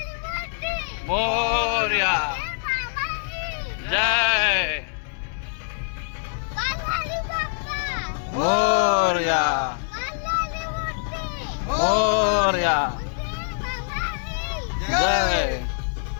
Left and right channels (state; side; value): silent; right; digital silence